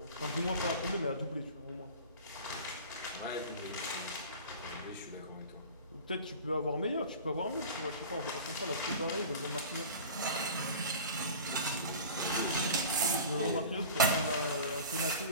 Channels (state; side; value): inverted; both; correlation -0.37